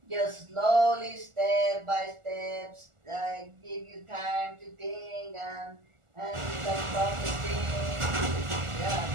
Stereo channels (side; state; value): left; late; 1.4 ms